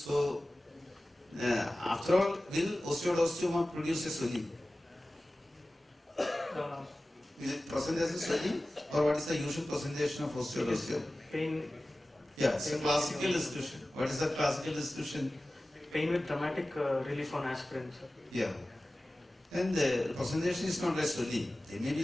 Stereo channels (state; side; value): normal; both; correlation 0.96